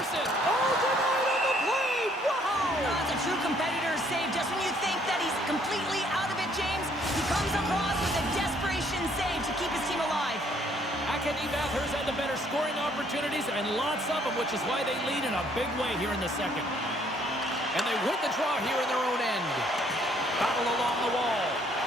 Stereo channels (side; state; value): both; normal; correlation 0.64